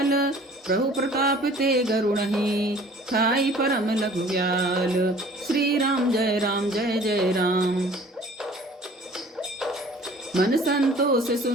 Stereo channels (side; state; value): both; normal; correlation 0.50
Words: प्रभु प्रताप ते गरुणहि, ठाई परम लघु व्याल। श्री राम जय जय राम। मन संतोष